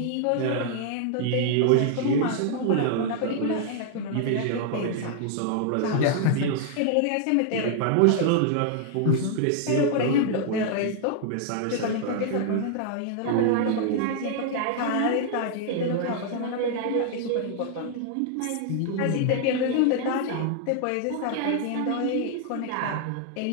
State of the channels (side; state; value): both; different; correlation 0.00